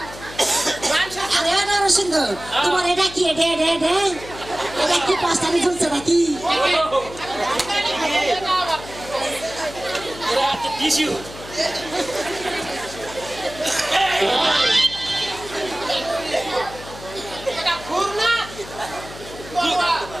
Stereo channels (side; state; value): left; noise; hum, 15 dB below the sound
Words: মানুষের আরে নরসিংহ তোমার এটা কি এটা এটা এটা এটা কি পাঁচটানি চলছে নাকি এটা আবার এরা হচ্ছে টিস্যু। এটা ঘুর না